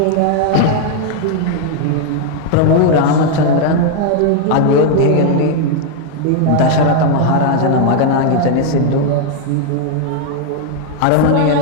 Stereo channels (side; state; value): both; different; correlation 0.00